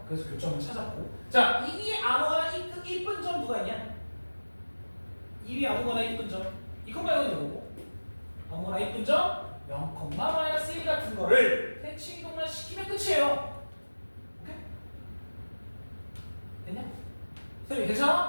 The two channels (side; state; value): both; inverted; correlation -1.00